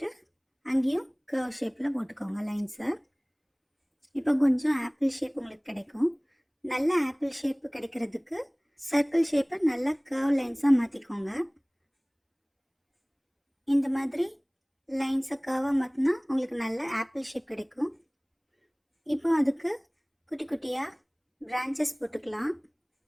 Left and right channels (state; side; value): identical; both; correlation 1.00